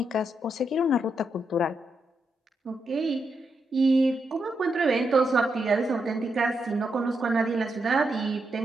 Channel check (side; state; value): both; normal; correlation 0.83